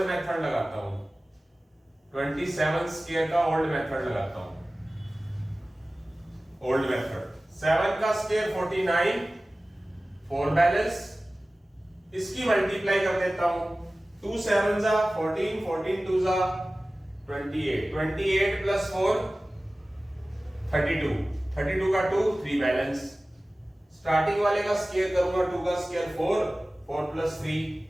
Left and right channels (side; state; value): both; normal; correlation 0.97